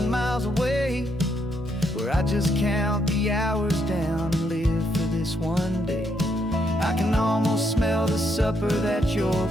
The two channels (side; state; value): both; normal; correlation 0.76